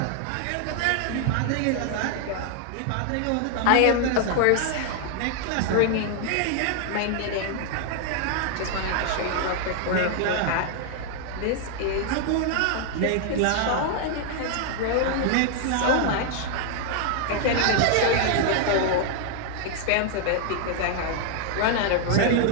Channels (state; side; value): different; both; correlation 0.00